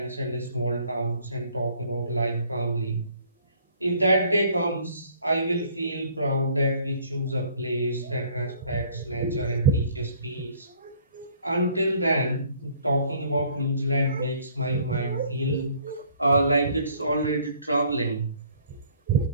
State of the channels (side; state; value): both; inverted; correlation -0.59